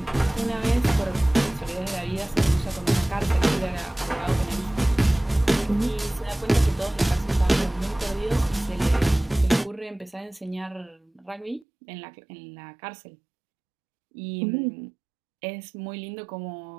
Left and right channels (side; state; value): left; drops out; at 11.7 s